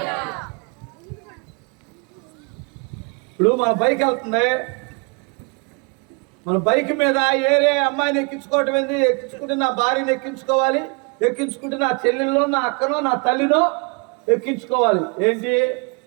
ఇప్పుడు మన బైక్ వెళ్తుంది, మన బైక్ మీద ఏరే అమ్మాయిని ఎక్కించుకోవటం ఏంది? ఎక్కించుకుంటే నా భార్యని ఎక్కించుకోవాలి, ఎక్కించుకుంటే నా చెల్లెల్లో, నా అక్కనో, నా తల్లినో ఎక్కించుకోవాలి. ఏంటి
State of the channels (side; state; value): left; quieter; 32.5 dB